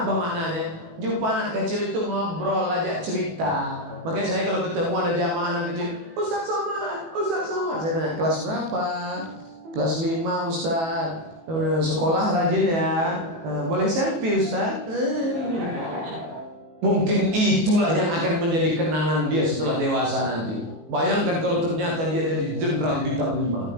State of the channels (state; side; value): late; left; 18 ms